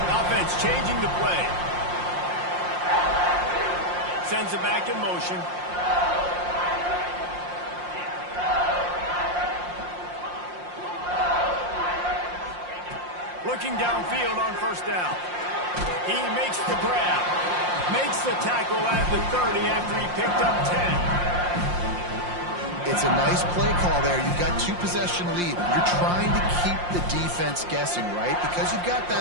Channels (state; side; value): late; left; 5.7 ms